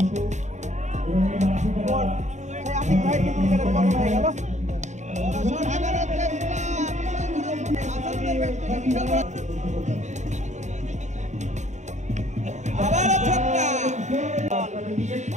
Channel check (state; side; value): late; left; 0.34 ms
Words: আতিক ভাই কিন্তু উইকেটের পতন হয়ে গেল। বড় শট হাগানোর চেষ্টা, আবারও ছক্কা।